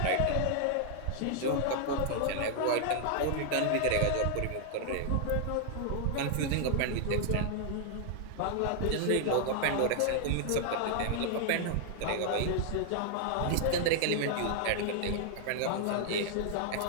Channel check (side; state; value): both; different; correlation -0.01